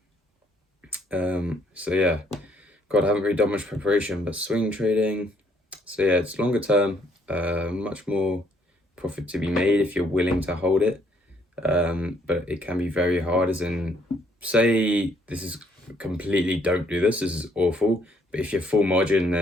So yeah, God, I haven't really done much preparation, but swing trading. So yeah, it's longer term, much more profit to be made if you're willing to hold it. But it can be very hard, as in, say this is completely, don't do this is awful, but if you're full margin,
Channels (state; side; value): normal; both; correlation 0.68